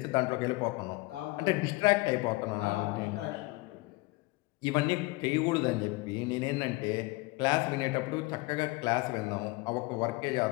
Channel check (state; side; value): quieter; right; 23.2 dB